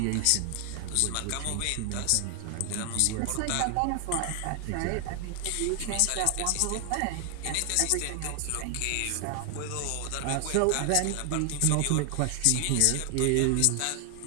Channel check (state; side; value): different; both; correlation 0.00